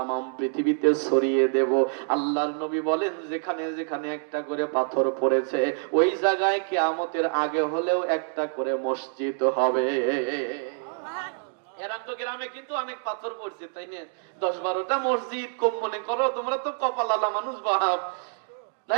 পৃথিবীতে ছড়িয়ে দেব। আল্লাহ আল্লাহর নবী বলেন যেখানে যেখানে একটা করে পাথর পড়েছে ওই জায়গায় কিয়ামতের আগে হলেও একটা করে মসজিদ হবে। এরাম তো গ্রামে কিন্তু অনেক পাথর পড়ছে, তাই না? 10-12টা মসজিদ কম মনে করো, তোমরা তো কপালালা মানুষ বাপ,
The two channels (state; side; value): silent; left; 60 dB below the other